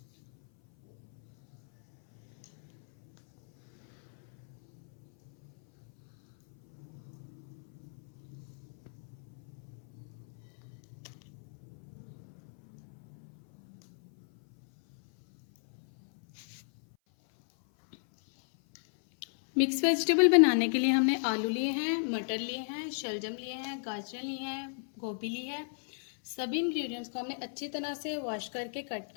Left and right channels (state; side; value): silent; right; 55 dB below the other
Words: मिक्स वेजिटेबल बनाने के लिए हमने आलू लिए हैं, मटर लिए हैं, शलजम लिए हैं, गाजर लिए हैं, गोभी ली है। सभी इंग्रेडिएंट्स को हमने अच्छी तरह से वॉश करके कट